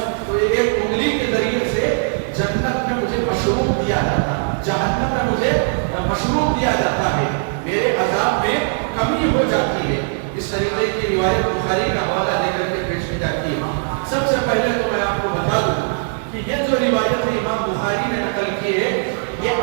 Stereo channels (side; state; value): left; silent; 66 dB below the other